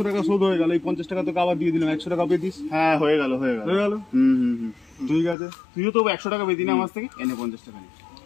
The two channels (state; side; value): drops out; right; at 5.4 s